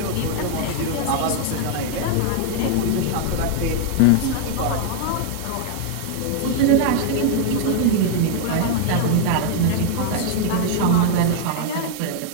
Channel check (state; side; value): different; both; correlation 0.00